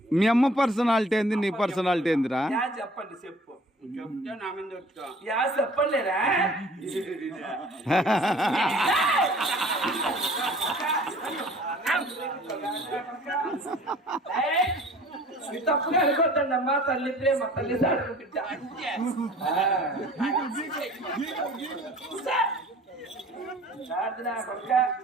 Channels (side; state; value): both; normal; correlation 0.50